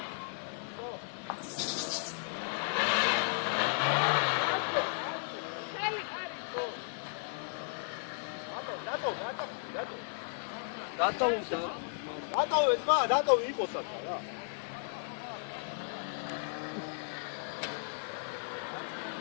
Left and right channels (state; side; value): silent; right; 55 dB below the other